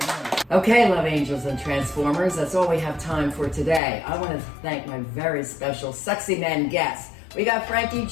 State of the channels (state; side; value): drops out; right; at 3.8 s